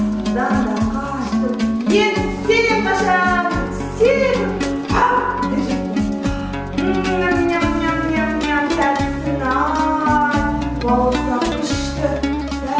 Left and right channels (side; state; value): both; identical; correlation 1.00